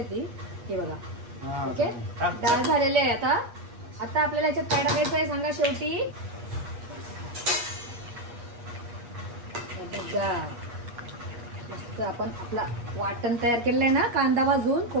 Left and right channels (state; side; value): late; left; 8.4 ms